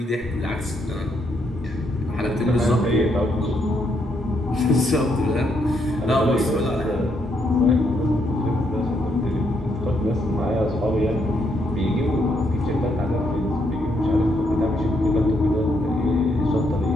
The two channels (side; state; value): both; normal; correlation 0.76